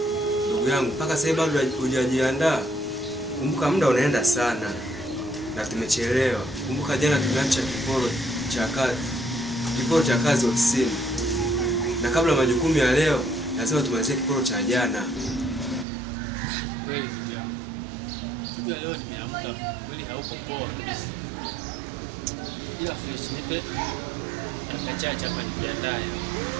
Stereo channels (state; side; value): drops out; left; at 15.9 s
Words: Ndugu yangu, mpaka sasa bado hujajiandaa. Kumbuka muda unaenda sana. Na tumechelewa. Kumbuka jana tumeacha kiporo cha kazi ofisini. Na kabla majukumu ya leo, lazima tumalizie kiporo cha jana. Kweli ndio. Siku ya leo nimeamka kweli hauko poa kabisa. Ila fresh nipe akachacha hapa nijiandae.